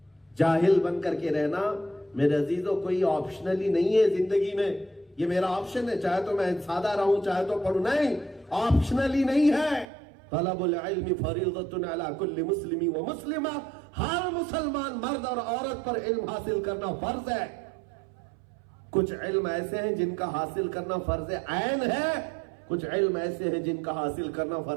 جاہل بن کر کے رہنا میرے عزیزوں کوئی آپشنلی نہیں ہے زندگی میں، یہ میرا آپشن ہے، چاہے تو میں سادہ رہوں چاہے تو پڑھوں، نہیں، آپشنلی نہیں ہے۔ طلب العلم فریضۃ علی کل مسلم و مسلمہ، ہر مسلمان مرد اور عورت پر علم حاصل کرنا فرض ہے۔ کچھ علم ایسے ہیں جن کا حاصل کرنا فرض عین ہے، کچھ علم ایسے ہیں جن کا حاصل کرنا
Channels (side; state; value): left; drops out; at 9.9 s